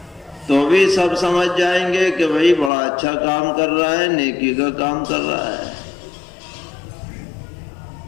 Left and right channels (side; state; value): right; drops out; at 2.7 s